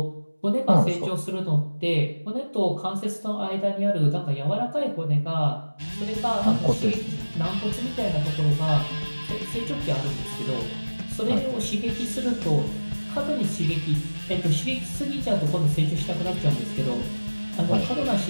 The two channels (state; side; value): inverted; both; correlation -1.00